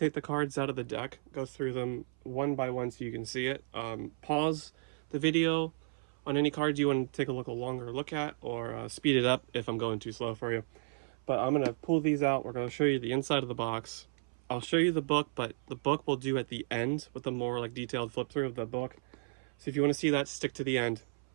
the cards out of the deck, go through them one by one so you can see it. Pause the video on any cards you want to take a longer look at, or speed it up if I'm going too slow for you. But I'm going to pull these out. We're going to show you the inside of the box. I'll show you the book, but the book we'll do at the end with a more detailed flip through of the book. So if you want to see that, stick to the end.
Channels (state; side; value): silent; left; 55 dB below the other